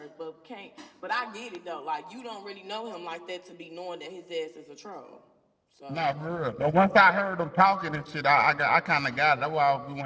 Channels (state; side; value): identical; both; correlation 1.00